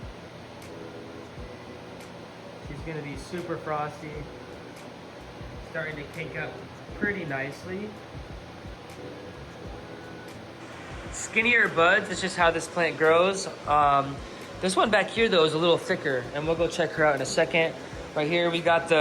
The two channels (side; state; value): both; identical; correlation 1.00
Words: She's gonna be super frosty. Starting to kink up pretty nicely. Skinnier buds, it's just how this plant grows. This one back here though is a little thicker, and we'll go check her out in a second. Right here we got